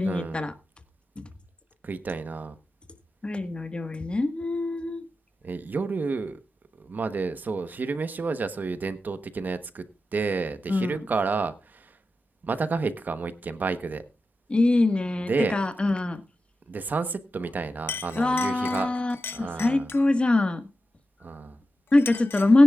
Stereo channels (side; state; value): both; normal; correlation 0.91